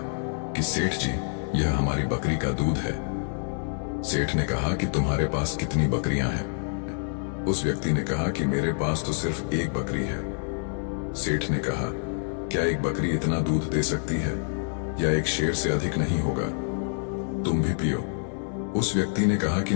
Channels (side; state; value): right; silent; digital silence